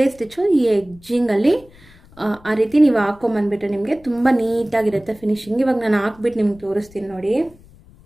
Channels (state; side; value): noise; left; rumble, 25 dB below the sound